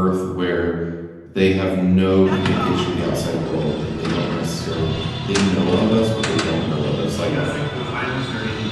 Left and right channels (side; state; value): both; identical; correlation 1.00